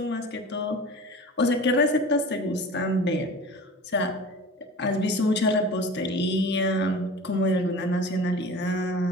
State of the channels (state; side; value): normal; both; correlation 0.38